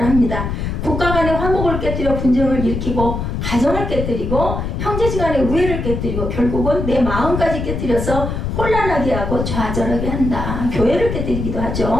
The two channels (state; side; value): noise; left; rumble, 3 dB below the sound